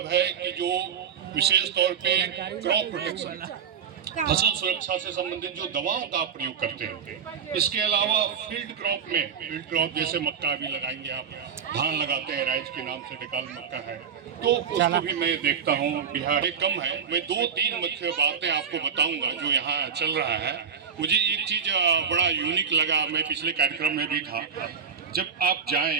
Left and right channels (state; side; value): quieter; left; 6.7 dB